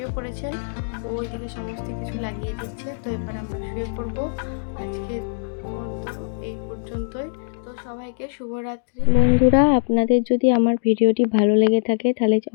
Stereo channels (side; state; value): right; silent; digital silence